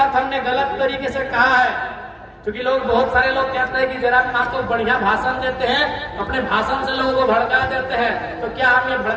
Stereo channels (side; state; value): both; identical; correlation 1.00